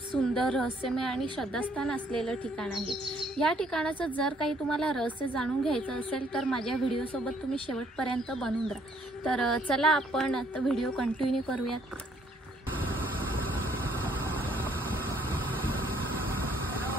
सुंदर, रहस्यमय आणि श्रद्धास्थान असलेलं ठिकाण आहे. या ठिकाणाचं जर काही तुम्हाला रहस्य जाणून घ्यायचं असेल तर माझ्या व्हिडिओसोबत तुम्ही शेवटपर्यंत बनून राहा. तर चला आपण आता व्हिडिओ कंटिन्यू करूयात.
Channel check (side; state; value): both; normal; correlation 0.65